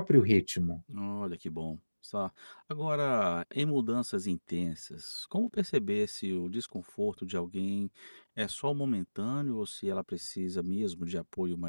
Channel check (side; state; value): both; inverted; correlation -1.00